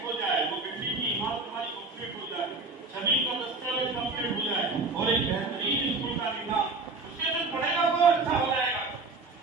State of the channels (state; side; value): quieter; left; 3.7 dB